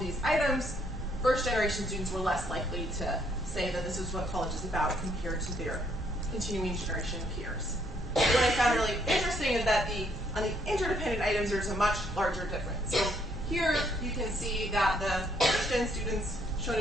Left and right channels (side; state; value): both; normal; correlation 0.69